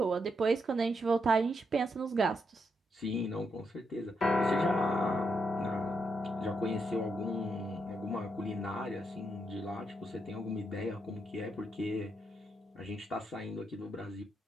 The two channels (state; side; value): normal; both; correlation 0.81